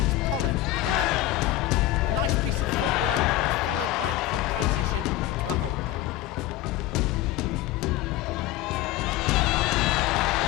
Polling of the Netherlands. A nice piece of footwork was followed by a quick transition into a hold down.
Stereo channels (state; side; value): quieter; right; 14.5 dB